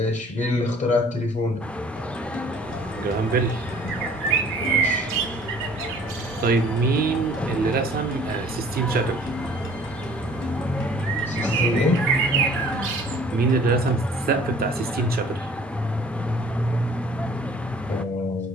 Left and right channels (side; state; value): both; normal; correlation 0.52